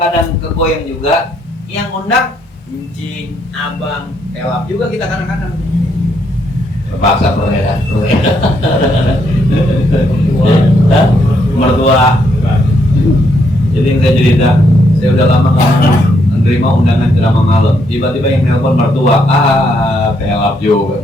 kegoyang juga. Yang undang Encing, Abang, Pelap juga kita kadang-kadang terpaksa mertua. Jadi yang saya cerita, saya udah lama menerima undangan ceramah malam. Tiba-tiba yang nelpon mertua, Pelap juga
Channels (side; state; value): both; normal; correlation 0.74